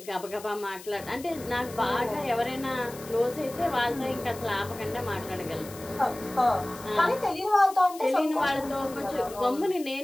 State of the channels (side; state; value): left; noise; hiss, 17 dB below the sound